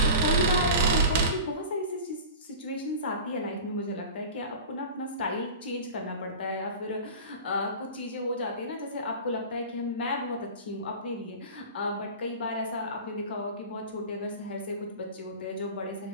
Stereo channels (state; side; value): inverted; both; correlation -0.34